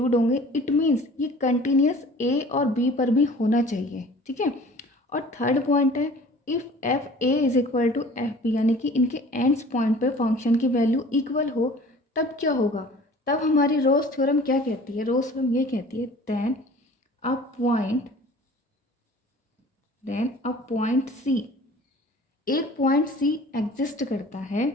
होंगे। इट मीन्स ये कंटिन्यूस ए और बी पर भी होना चाहिए, ठीक है। और थर्ड पॉइंट है if F A is equal to F B, यानी कि इनके एंड्स पॉइंट पे फंक्शन की वैल्यू इक्वल हो, तब क्या होगा, तब हमारी रोज थ्योरम क्या कहती है, रोज थ्योरम ये कहती है देन अ पॉइंट सी, एक पॉइंट सी एग्जिस्ट करता है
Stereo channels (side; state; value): both; normal; correlation 0.46